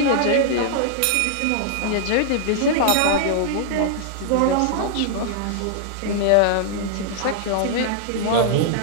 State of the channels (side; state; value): both; different; correlation -0.01